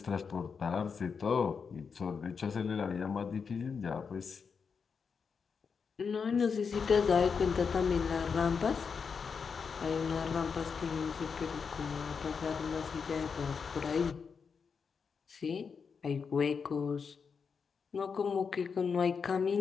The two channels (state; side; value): quieter; right; 5.8 dB